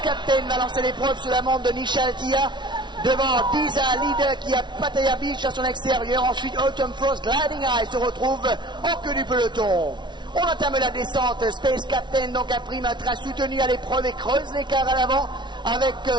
Captain va lancer l'épreuve sous la montre de Nishal Tia. Devant Disa Leader qui a Pattaya Beach à son extérieur. Ensuite Autumn Frost Gliding Eye se retrouve en queue du peloton. On entame la descente. Space Captain donc imprime un train soutenu à l'épreuve et creuse l'écart à l'avant avec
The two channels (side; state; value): left; late; 0.22 ms